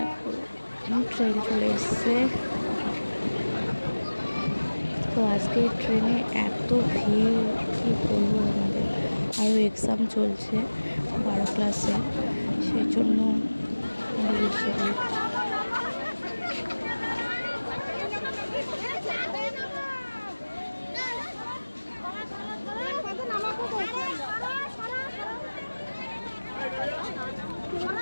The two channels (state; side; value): inverted; both; correlation -1.00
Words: ট্রেন চলে এসছে। তো আজকে ট্রেনে এত ভিড়, কি বলবো তোমাদের। আরও এক্সাম চলছে 12 ক্লাসে, সেই জন্য আরও বেশি ভিড়।